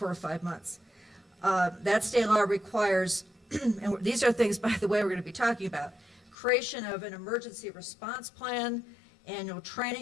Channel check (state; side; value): drops out; right; at 6.4 s